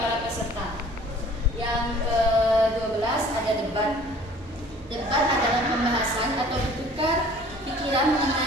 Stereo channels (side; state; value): both; normal; correlation 0.51